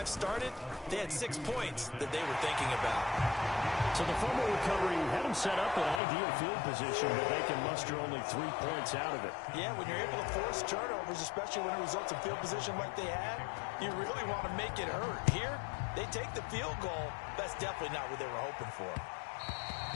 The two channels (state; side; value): drops out; right; at 6.0 s